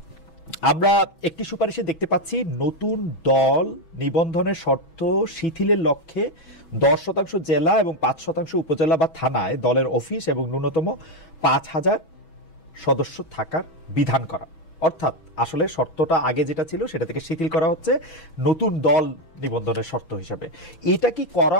আমরা একটি সুপারিশে দেখতে পাচ্ছি নতুন দল নিবন্ধনের শর্ত শিথিলের লক্ষ্যে 10% জেলা এবং 5% উপজেলা বা থানায় দলের অফিস এবং ন্যূনতম 5,000 সদস্য থাকার বিধান করা। অর্থাৎ আসলে শর্তটা আগে যেটা ছিল সেটা থেকে শিথিল করা হচ্ছে নতুন দল নিবন্ধনের শর্ত হিসেবে। এটা কি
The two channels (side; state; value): right; late; 6.1 ms